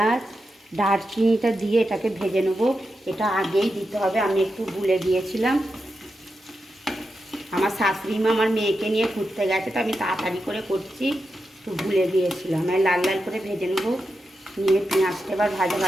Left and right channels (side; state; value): both; normal; correlation 0.88